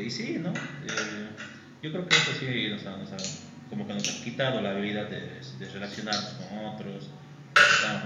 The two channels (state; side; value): identical; both; correlation 1.00